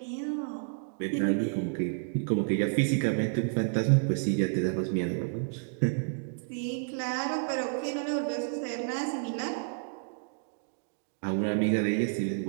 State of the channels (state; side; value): silent; left; digital silence